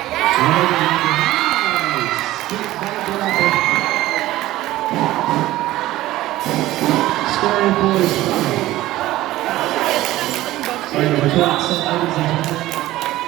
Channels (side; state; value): left; quieter; 16.1 dB